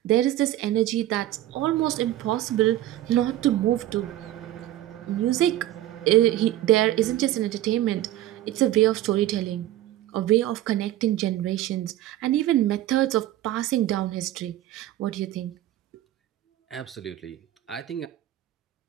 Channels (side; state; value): left; quieter; 13.9 dB